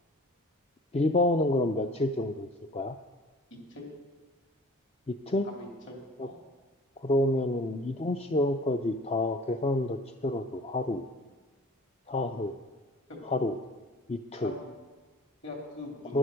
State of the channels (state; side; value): normal; both; correlation 0.47